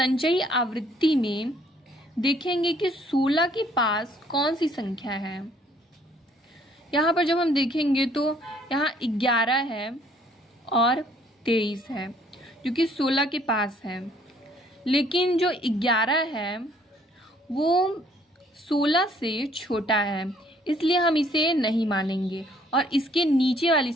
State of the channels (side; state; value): both; normal; correlation 0.62